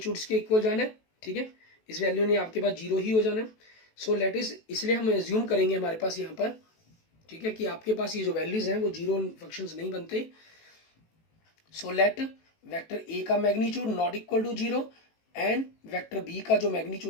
के इक्वल जाना है, ठीक है. इस वैल्यू ने आपके पास 0 ही हो जाना है. सो लेट इज, इसलिए हम एज्यूम करेंगे हमारे पास यहाँ पर, ठीक है, कि आपके पास ये जो वैल्यूज हैं वो 0 फंक्शंस नहीं बनते. सो लेट वेक्टर a का magnitude not equal to 0 and vector b का जो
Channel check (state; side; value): late; right; 18 ms